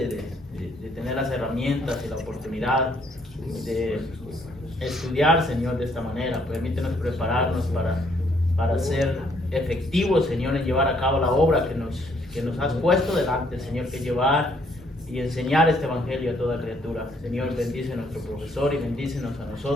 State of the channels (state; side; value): normal; both; correlation 0.68